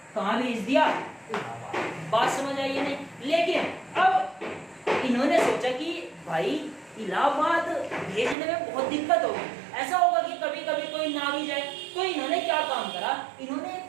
कहाँ भेज दिया, इलाहाबाद। बात समझ आई या नहीं। लेकिन अब इन्होंने सोचा कि भाई इलाहाबाद भेजने में बहुत दिक्कत होगी, ऐसा होगा कि कभी कभी कोई ना भी जाए। तो इन्होंने क्या काम करा, इन्होंने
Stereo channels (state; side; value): drops out; left; at 8.3 s